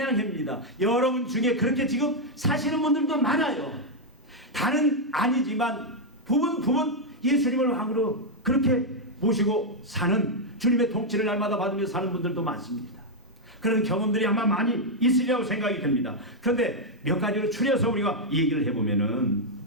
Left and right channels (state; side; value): normal; both; correlation -0.01